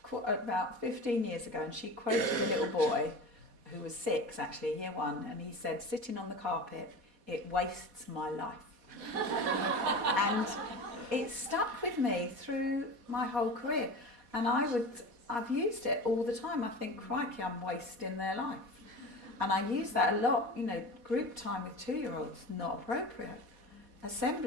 about 15 years ago, and she quoted a little boy who was 6, actually, year 1, and he said, "Sitting on the carpet, it wastes my life." And it stuck with me through my whole career. And I've used it all the time. I think, crikey, I'm wasting their life. And I use that a lot. Group time with 2-year-olds, not appropriate.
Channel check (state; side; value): late; left; 4.2 ms